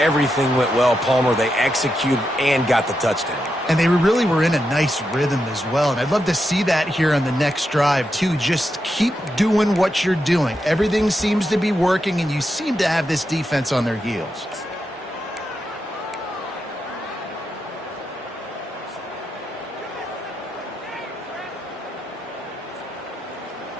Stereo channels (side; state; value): both; normal; correlation 0.86